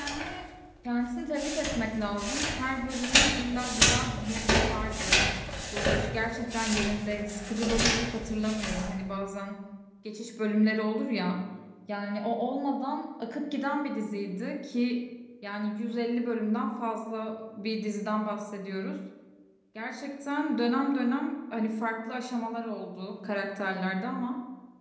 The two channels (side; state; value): both; identical; correlation 1.00